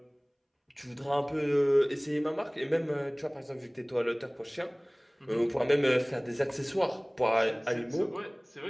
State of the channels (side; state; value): both; identical; correlation 1.00